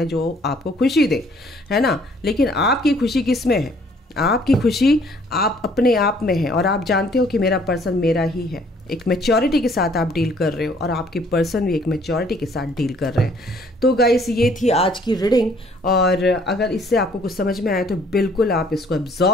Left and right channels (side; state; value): both; normal; correlation 0.60